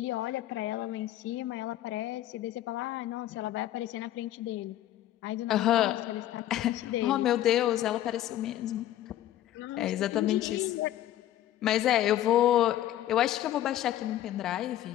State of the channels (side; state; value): right; quieter; 13.0 dB